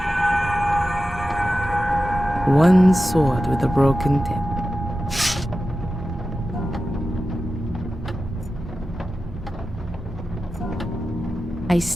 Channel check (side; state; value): both; normal; correlation 0.93